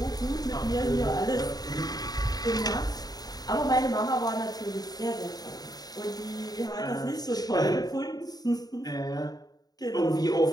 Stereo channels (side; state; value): right; late; 0.19 ms